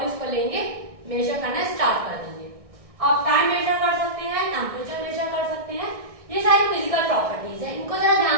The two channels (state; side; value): late; left; 1.6 ms